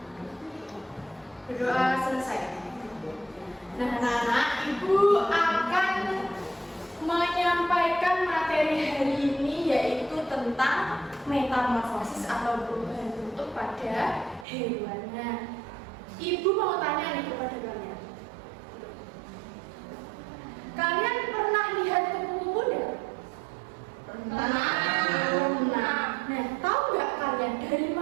berdoa selesai. Nah anak-anak, Ibu akan menyampaikan materi hari ini yaitu tentang metamorfosis atau perubahan bentuk pada hewan. Nah, Ibu mau tanya nih kepada kalian. Kalian pernah lihat kupu-kupu enggak? Pernah. Nah, tahu nggak kalian dari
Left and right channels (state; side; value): drops out; left; at 14.5 s